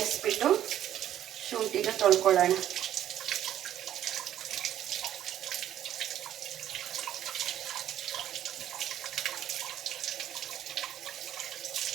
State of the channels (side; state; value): left; quieter; 11.5 dB